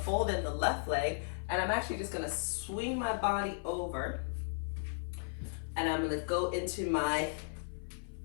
in the left leg, and I'm actually just gonna swing my body over, and I'm gonna go into my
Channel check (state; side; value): silent; right; 54 dB below the other